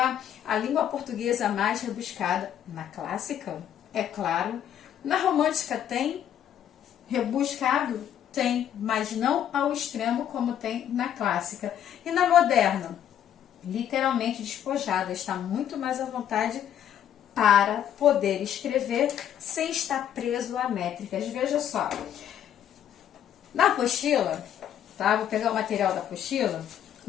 a língua portuguesa mais rebuscada. Na clássica, é claro. Na romântica tem rebuscado? Tem, mas não ao extremo como tem na clássica. E na moderna? Literalmente despojada, está muito mais à vontade para poder escrever sem estar preso a métricas. Veja só, na apostila, tá? Vou pegar o material da apostila,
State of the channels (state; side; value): quieter; right; 10.1 dB